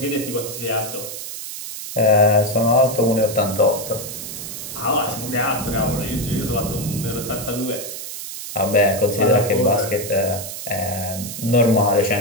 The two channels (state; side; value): noise; right; hiss, 8 dB below the sound